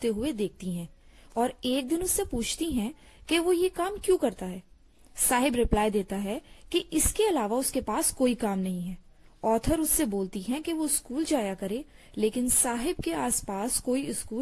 हुए देखती हैं और एक दिन उससे पूछती हैं कि वो ये काम क्यों करता है। साहिब रिप्लाई देता है कि इसके अलावा उसके पास कोई काम नहीं है। ऑथर उससे बोलती हैं कि वो स्कूल जाया करे, लेकिन साहिब के आसपास कोई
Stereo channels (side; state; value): both; identical; correlation 1.00